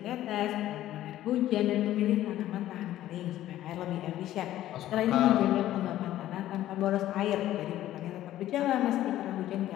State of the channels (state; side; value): quieter; right; 13.5 dB